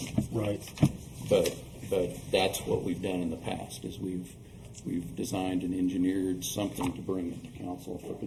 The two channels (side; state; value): both; identical; correlation 1.00